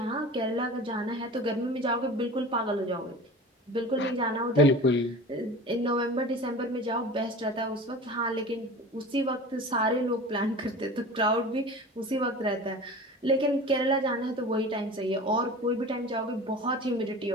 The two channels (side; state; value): both; normal; correlation 0.36